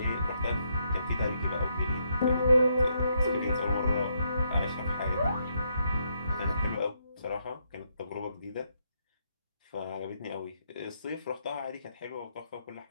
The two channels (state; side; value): inverted; both; correlation -0.76